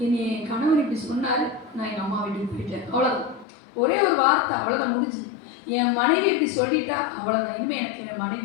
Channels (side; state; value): right; drops out; at 3.5 s